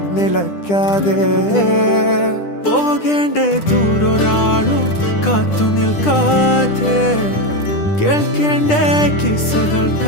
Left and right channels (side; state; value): right; late; 10 ms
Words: നിലയ്ക്കാതെ പോകേണ്ട ദൂരൊരാളും കാത്തു നിൽക്കാതെ കേൾക്കേണ്ട കിസ്സകൾ